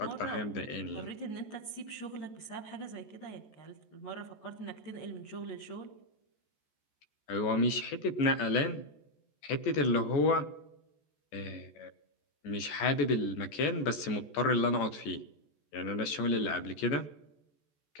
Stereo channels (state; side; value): late; right; 14 ms